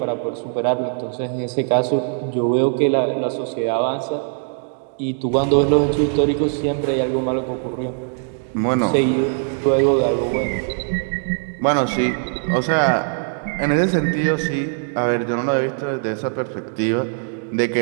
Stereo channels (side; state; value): left; silent; 60 dB below the other